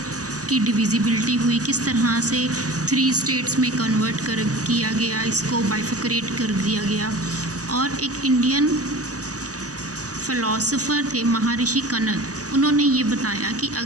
की डिविजिबिलिटी हुई, किस तरह से 3 स्टेट्स में कन्वर्ट किया गया, इसको बाइफिकरेट कर दिया गया। और एक इंडियन फ़िलासफ़र थे महर्षि कनद, उन्होंने ये बताया कि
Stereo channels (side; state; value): left; late; 0.67 ms